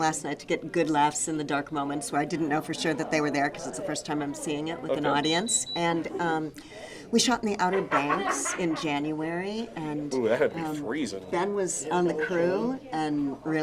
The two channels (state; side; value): identical; both; correlation 1.00